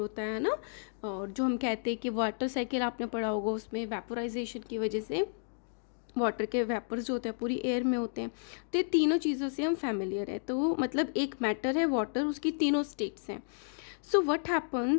है ना, और जो हम कहते हैं कि वाटर साइकिल आपने पढ़ा होगा, उसमें वेपोराइजेशन की वजह से वाटर के वेपर्स जो होते हैं पूरी एयर में होते हैं. तो ये तीनों चीज़ों से हम फैमिलियर है. तो मतलब एक मैटर है वाटर, उसकी तीनों स्टेट्स हैं. So what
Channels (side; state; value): right; silent; digital silence